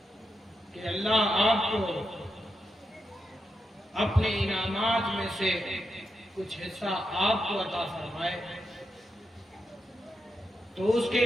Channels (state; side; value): normal; both; correlation 0.85